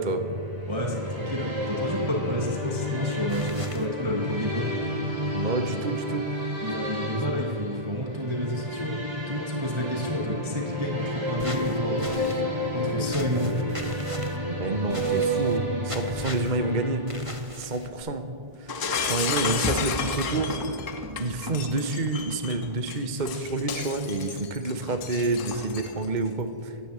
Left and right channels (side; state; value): left; late; 1.0 ms